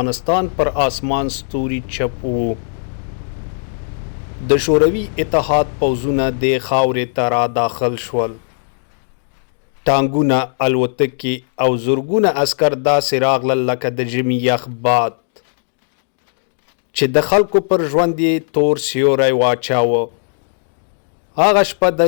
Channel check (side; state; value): right; silent; digital silence